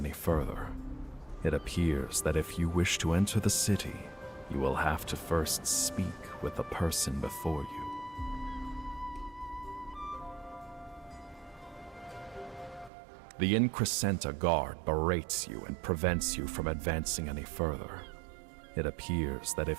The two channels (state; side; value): drops out; left; at 12.9 s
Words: further. It appears that if you wish to enter the city, you will have to first speak with the person before you. The Increscenta guard berates you and prevents you from advancing any further. It appears that if